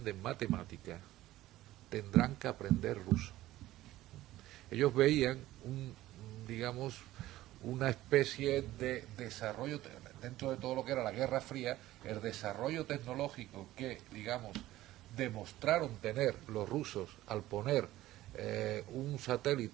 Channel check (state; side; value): quieter; left; 15.6 dB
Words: matemática, tendrán que aprender ruso. Ellos veían una especie de desarrollo, dentro de todo lo que era la Guerra Fría, el desarrollo tecnológico que, demostraron tener los rusos al poner un